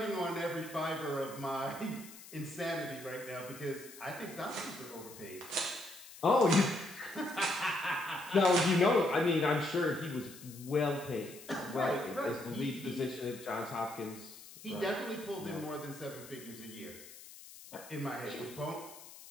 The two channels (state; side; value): noise; left; hiss, 17 dB below the sound